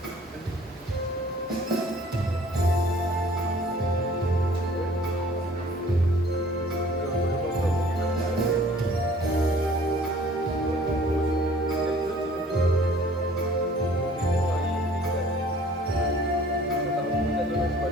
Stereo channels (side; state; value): both; normal; correlation 0.53